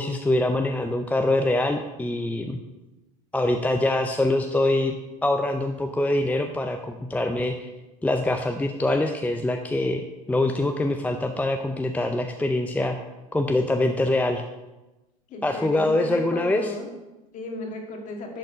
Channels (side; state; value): both; normal; correlation 0.83